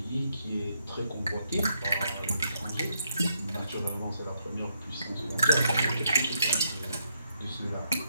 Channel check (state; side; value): inverted; both; correlation -0.77